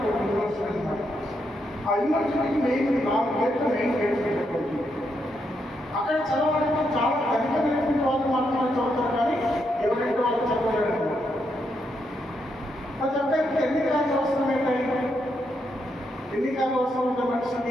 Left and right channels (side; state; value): both; normal; correlation 0.80